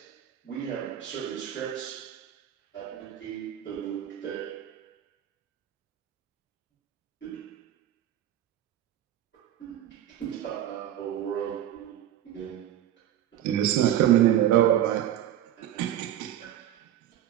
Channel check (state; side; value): quieter; left; 11.7 dB